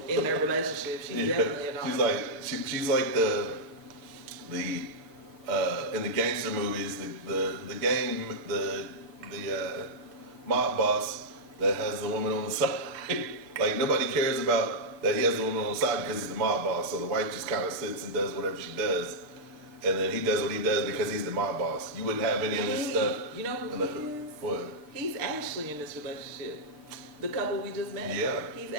in their relationship. She's definitely a dominant. She's like the in the gangster movies, the mob boss that has the woman on the side. Like nobody cares about that he has the woman on the side because he's the mob boss. So the wife just kind of sits and does whatever she does, and then he does what he does because he's the mob boss. You wouldn't have any of this stuff. You know who he is? What? He's Ashley in this relationship. The couple we just met. Yeah. He's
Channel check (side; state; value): left; late; 6.7 ms